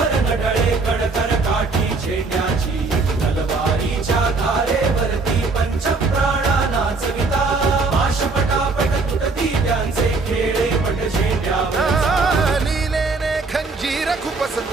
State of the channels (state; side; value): quieter; left; 3.9 dB